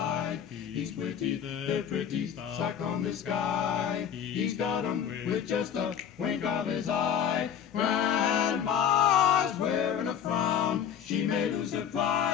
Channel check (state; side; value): quieter; right; 8.6 dB